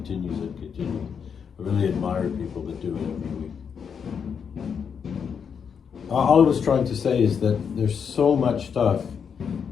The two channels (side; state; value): right; quieter; 6.9 dB